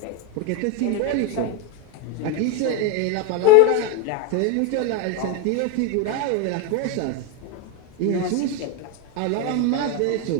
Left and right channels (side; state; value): both; different; correlation 0.02